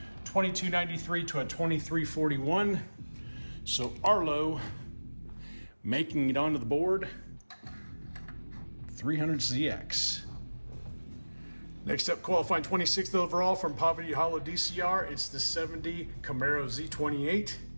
2293 to a 2341. So Arlo making it onto the board. 300ZX. Next up, qualifying 26th overall from Poverty Hollow DCR, it's the 70 Camaro Z28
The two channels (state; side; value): inverted; both; correlation -1.00